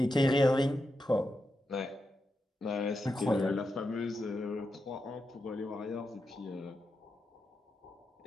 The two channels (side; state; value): both; normal; correlation 0.87